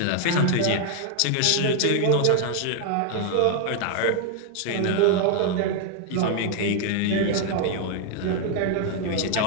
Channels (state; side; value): different; both; correlation 0.00